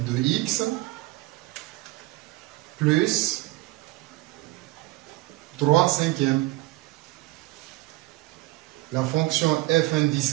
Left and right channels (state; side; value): quieter; left; 19.5 dB